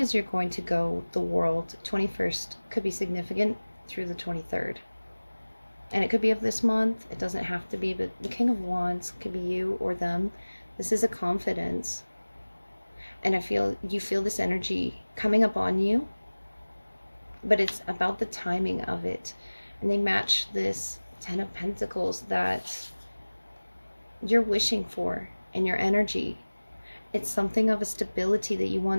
you're going to go. The world, 21st could be significant through the 23rd. And it could be of this month. It doesn't have to be, but the King of Wands could be you or them. This is a confidence. And you feel this energy coming up on you, but it's about the timing of it. And they match this Ten of Pentacles that you're wishing for in your energy. It's something of a stability that you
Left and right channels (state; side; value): inverted; both; correlation -1.00